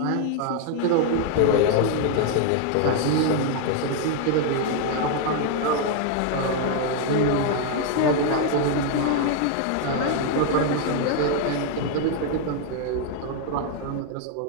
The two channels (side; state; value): both; different; correlation 0.00